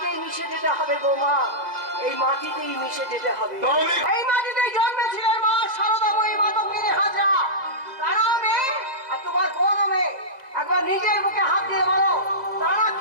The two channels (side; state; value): left; late; 1.9 ms